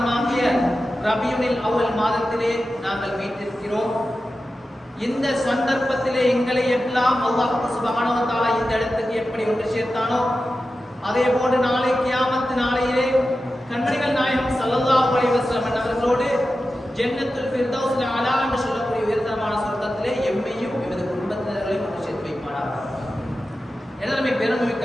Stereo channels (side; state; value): both; normal; correlation 0.92